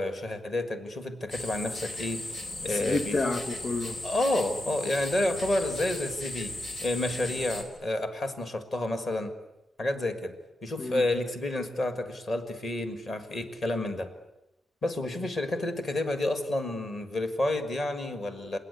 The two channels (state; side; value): normal; both; correlation 0.86